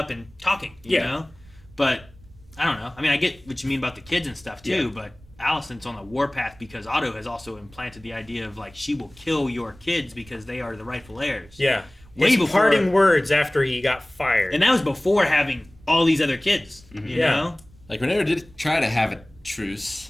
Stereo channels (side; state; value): right; noise; rumble, 25 dB below the sound